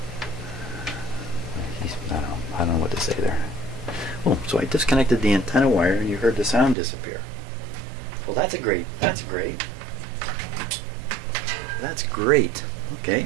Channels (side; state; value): left; drops out; at 6.8 s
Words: I don't know what to say there. Oh, so I disconnected the antenna wire and you heard the sound disappear. Well, that's great. That's great.